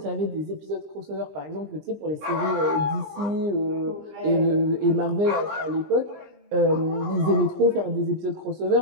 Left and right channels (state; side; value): late; left; 20 ms